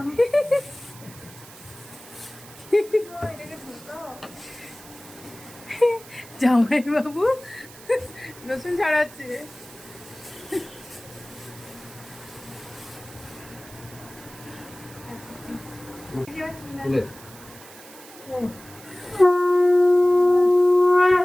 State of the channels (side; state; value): right; noise; hiss, 19 dB below the sound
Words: জামাই বাবু রসুন ছড়াচ্ছে।